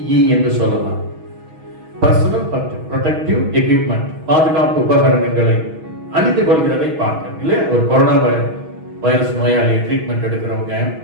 என்று சொல்லலாம். பர்சனல் ப்ரொடெக்டிவ் எக்யூப்மெண்ட், பாதுகாப்பு உபகரணங்களை அணிந்து கொள்கிறதை பார்க்க இல்லையா? ஒரு கொரோனா வைரஸ் நோயாளியை ட்ரீட்மெண்ட் எடுக்கிறவங்க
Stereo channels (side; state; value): left; late; 6.2 ms